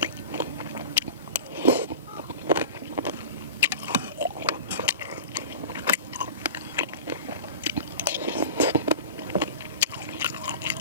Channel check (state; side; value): inverted; both; correlation -0.36